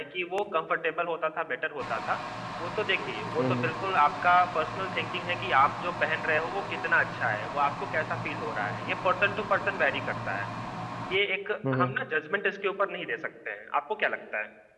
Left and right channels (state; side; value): identical; both; correlation 1.00